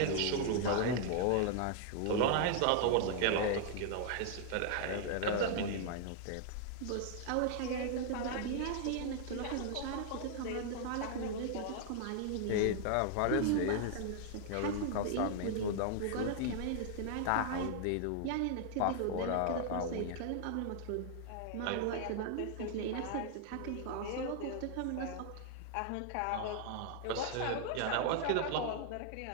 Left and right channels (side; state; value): both; different; correlation -0.01